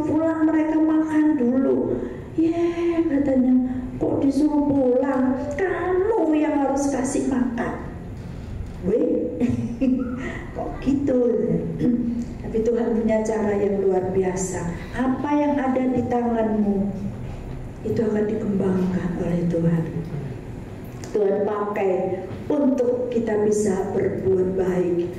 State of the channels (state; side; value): identical; both; correlation 1.00